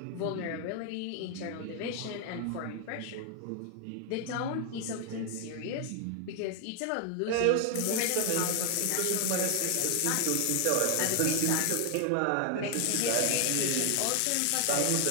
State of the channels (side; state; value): both; different; correlation 0.00